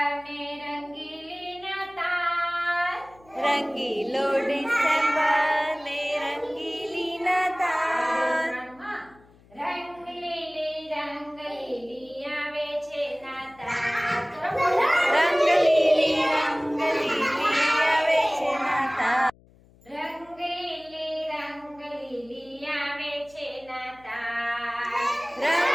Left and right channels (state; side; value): noise; left; hum, 28 dB below the sound